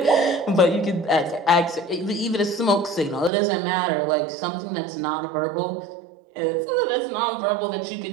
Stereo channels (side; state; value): left; drops out; at 3.3 s